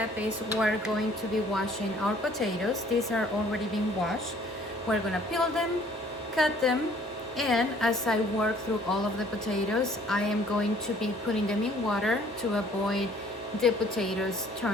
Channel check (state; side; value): normal; both; correlation 0.57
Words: is we're going to be washing our potatoes. These are already been washed. We're gonna peel them, cut them, and as I work through all of the potatoes, I am going to be putting them in water to avoid the potatoes